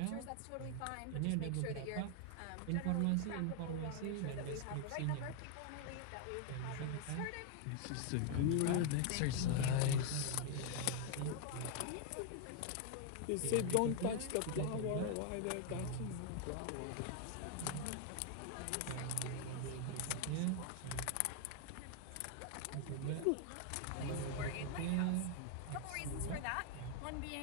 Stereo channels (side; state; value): both; different; correlation 0.00